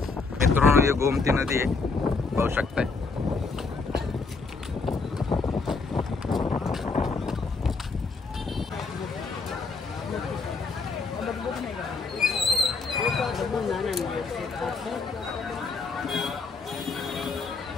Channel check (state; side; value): quieter; right; 4.3 dB